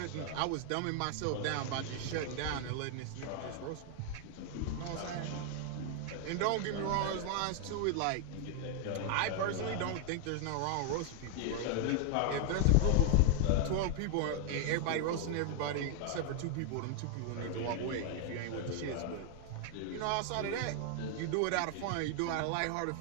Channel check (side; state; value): both; different; correlation 0.00